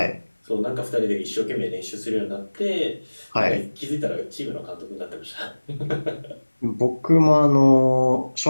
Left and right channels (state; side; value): inverted; both; correlation -1.00